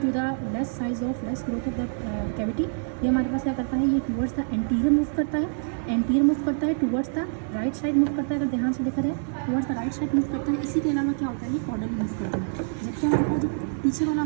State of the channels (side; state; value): left; silent; digital silence